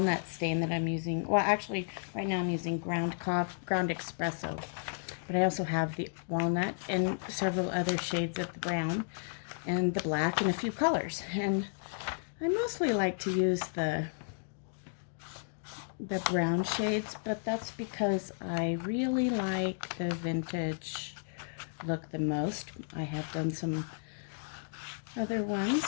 stain that I'm using. Well, actually, right now I'm using ground espresso, but I also have the walnut and several other shades of the brown and the black and a few colors. And I mostly like to use the brown shades, but that's because I really like the vintage look the most. I have done some other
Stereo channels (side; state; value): right; silent; digital silence